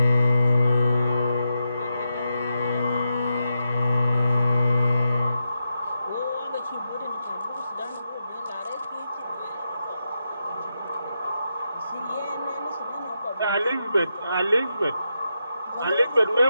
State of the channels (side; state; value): both; inverted; correlation -0.87